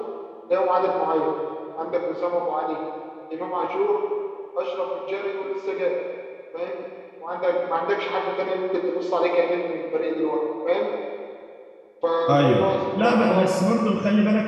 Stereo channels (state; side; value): identical; both; correlation 1.00